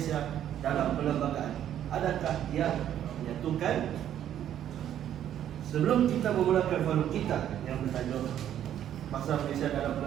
dalam Perlembagaan. Adakah yang menyatukan? Sebelum kita memulakan forum kita yang bertajuk Bahasa Malaysia dalam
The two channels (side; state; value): left; quieter; 10.7 dB